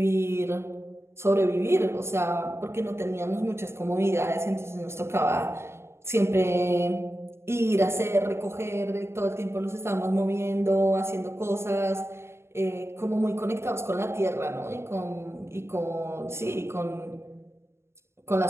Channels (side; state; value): left; late; 0.12 ms